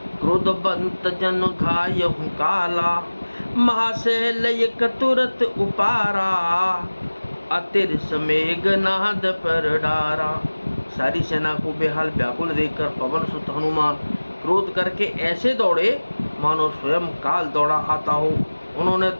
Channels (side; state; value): both; inverted; correlation -1.00